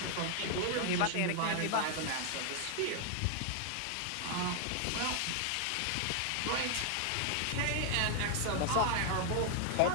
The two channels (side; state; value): both; different; correlation 0.00